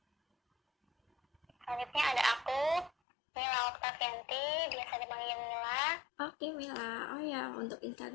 Selanjutnya ada aku, Mila Oktavianti, biasa dipanggil Mila. Oke Mila, oh ya untuk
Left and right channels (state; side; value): drops out; right; at 2.9 s